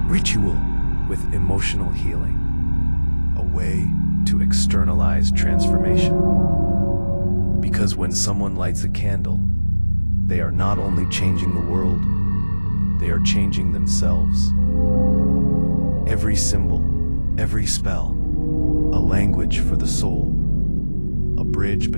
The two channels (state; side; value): inverted; both; correlation -1.00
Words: Ritual with emotional healing, a way to externalize transformation. Because when someone lights a candle, they are not only changing the world, they are changing themselves. Every symbol, every spell, a language for the soul, a bridge